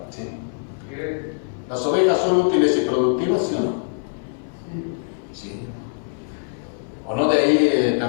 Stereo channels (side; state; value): right; silent; digital silence